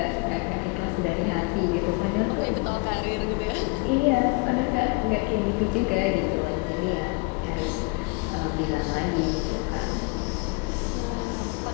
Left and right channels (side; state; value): right; quieter; 29.7 dB